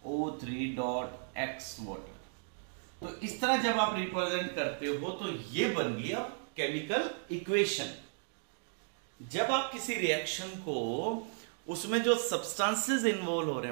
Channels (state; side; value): silent; left; digital silence